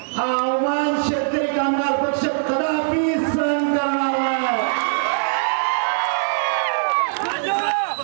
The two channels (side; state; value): left; silent; digital silence